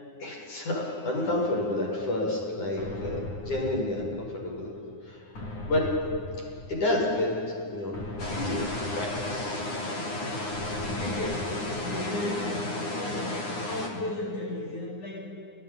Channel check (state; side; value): late; right; 9.8 ms